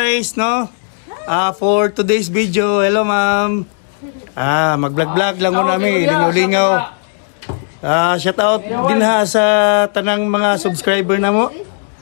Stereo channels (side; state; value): right; silent; 68 dB below the other